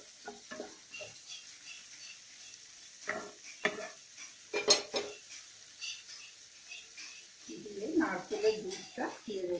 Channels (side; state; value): both; identical; correlation 1.00